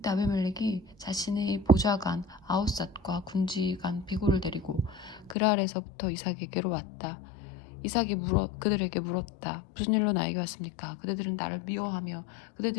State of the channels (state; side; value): drops out; right; at 5.4 s